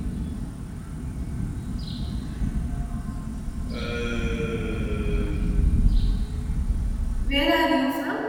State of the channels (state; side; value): identical; both; correlation 1.00